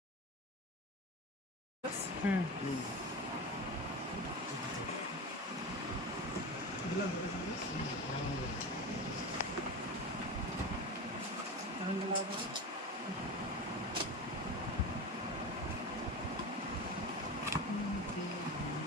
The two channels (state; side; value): normal; both; correlation 0.26